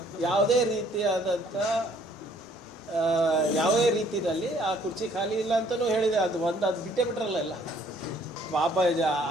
ಯಾವುದೇ ರೀತಿಯಾದಂಥ ಯಾವುದೇ ರೀತಿಯಲ್ಲಿ ಆ ಕುರ್ಚಿ ಖಾಲಿ ಇಲ್ಲ ಅಂತಲೂ ಹೇಳಿದೆ. ಅದು ಬಿಟ್ಟೇ ಬಿಟ್ರಲ್ಲ ಎಲ್ಲ ಪಾಪ.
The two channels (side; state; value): both; normal; correlation 0.61